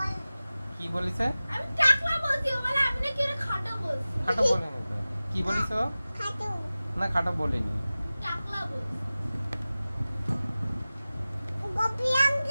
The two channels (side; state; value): both; inverted; correlation -0.96